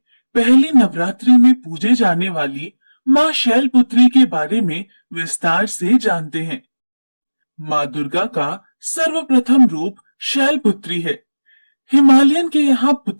पहली नवरात्रि में पूजे जाने वाली माँ शैलपुत्री के बारे में विस्तार से जानते हैं। माँ दुर्गा का सर्वप्रथम रूप शैलपुत्री है। हिमालयन के यहाँ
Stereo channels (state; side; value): inverted; both; correlation -1.00